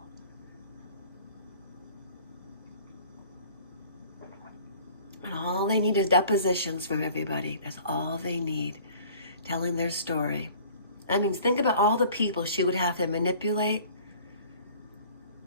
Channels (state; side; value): inverted; both; correlation -0.50